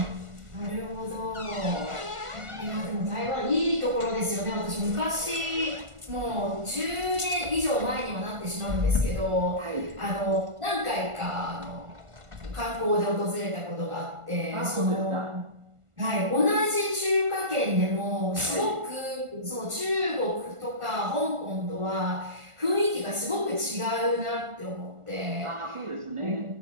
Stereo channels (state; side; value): late; left; 1.5 ms